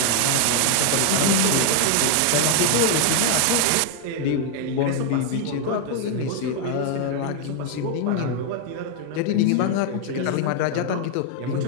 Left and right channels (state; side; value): different; both; correlation 0.00